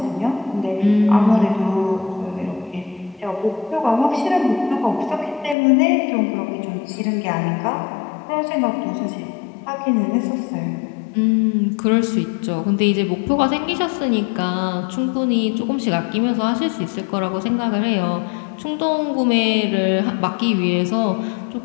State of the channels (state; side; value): drops out; right; at 5.6 s